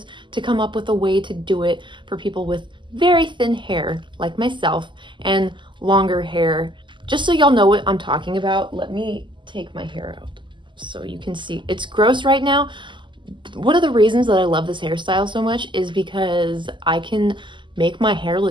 to come up with a way to do it for people with very thin hair like myself and longer hair. Just so y'all know what I'm talking about, let me take my hair out so you can see. It's gross right now. One of the reasons that I love this hairstyle so much is because I can make my hair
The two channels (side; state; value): left; late; 0.24 ms